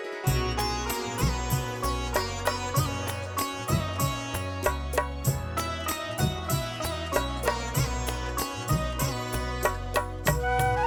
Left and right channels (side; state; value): both; identical; correlation 1.00